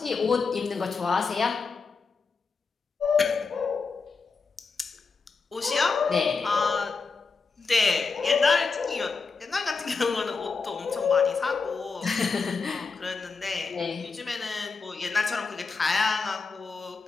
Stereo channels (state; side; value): quieter; right; 4.7 dB